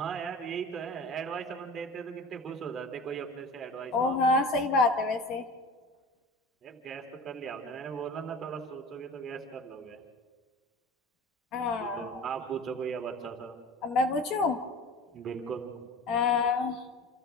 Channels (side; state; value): both; normal; correlation 0.37